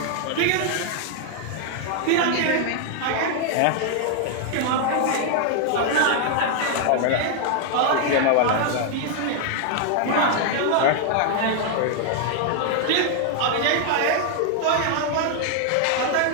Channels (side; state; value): both; different; correlation 0.00